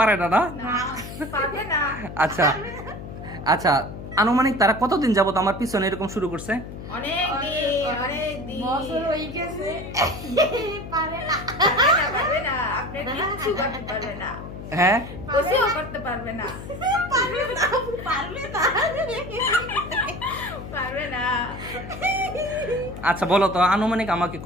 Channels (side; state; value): left; noise; hum, 11 dB below the sound